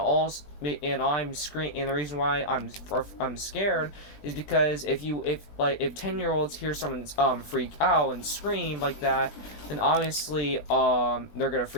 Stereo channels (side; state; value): right; late; 20 ms